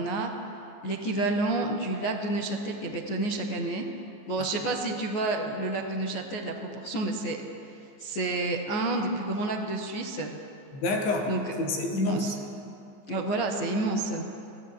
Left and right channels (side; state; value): right; late; 15 ms